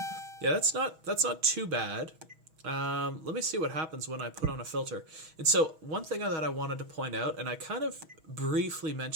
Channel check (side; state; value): left; late; 6.2 ms